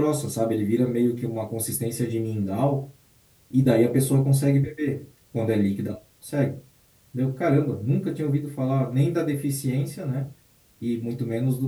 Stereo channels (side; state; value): both; identical; correlation 1.00